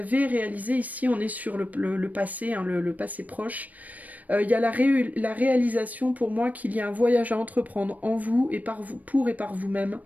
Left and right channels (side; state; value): left; late; 0.075 ms